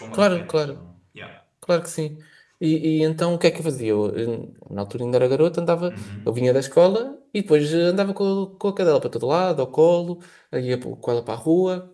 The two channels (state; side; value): identical; both; correlation 1.00